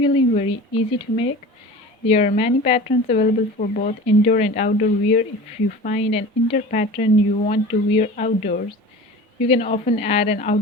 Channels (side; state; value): both; normal; correlation 0.37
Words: very easy to make. There are many patterns available for both indoor and outdoor wear. If you find an indoor pattern you want to wear outdoors, you can often add an